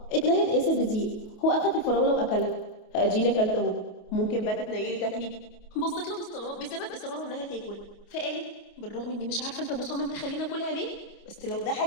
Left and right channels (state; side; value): late; right; 28 ms